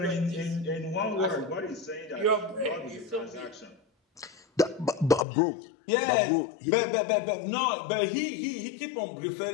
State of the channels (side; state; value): right; drops out; at 5.2 s